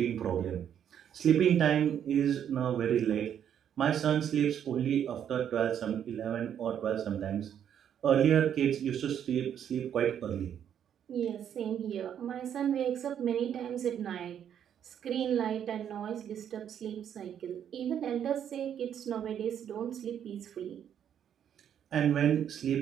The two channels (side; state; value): left; quieter; 9.2 dB